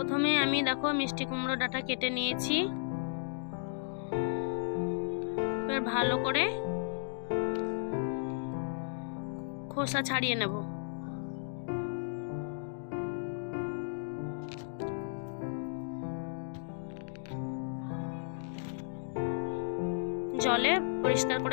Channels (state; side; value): silent; right; digital silence